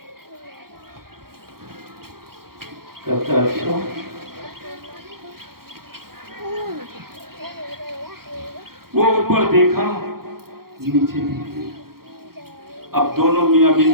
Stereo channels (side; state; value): left; late; 0.93 ms